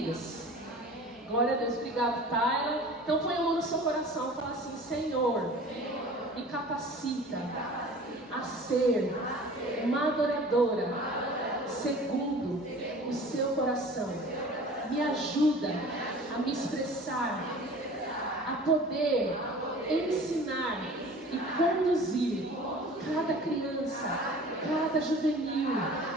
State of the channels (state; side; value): normal; both; correlation 0.43